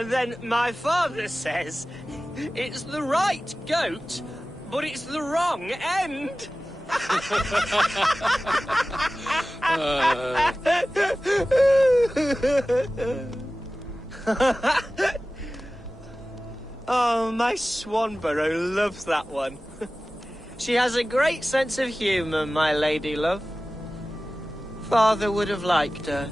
my father says, it's the right goat, but it's the wrong end. Oh, my Swanborough loves that one. She has a great sense of humor, my lady love. Father would have liked her.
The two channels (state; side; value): normal; both; correlation 0.96